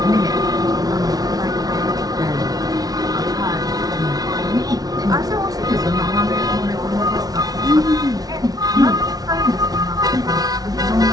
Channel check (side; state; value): left; late; 0.18 ms